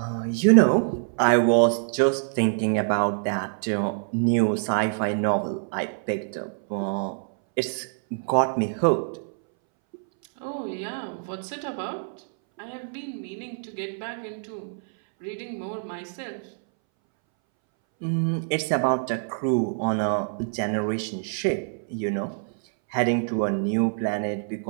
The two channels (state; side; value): silent; left; 61 dB below the other